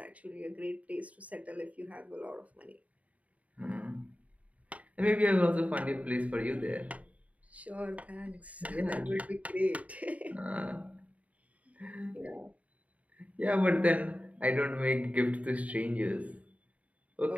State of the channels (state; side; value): late; left; 0.069 ms